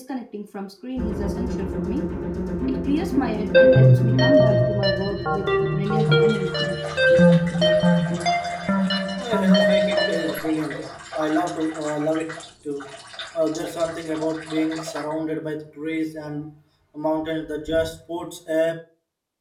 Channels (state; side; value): identical; both; correlation 1.00